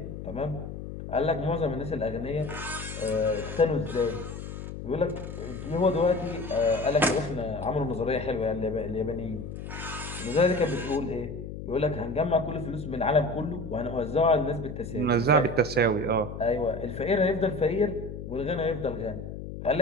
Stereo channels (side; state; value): left; noise; hum, 9 dB below the sound